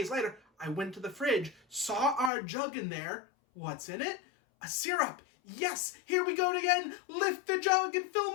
later, I went to the fridge, saw our jug in there. What's in it? A syrup. Yes, here we go again. Lift the jug and fill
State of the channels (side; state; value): right; drops out; at 2.3 s